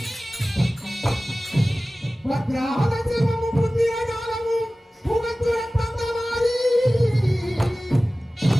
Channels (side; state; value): both; normal; correlation 0.97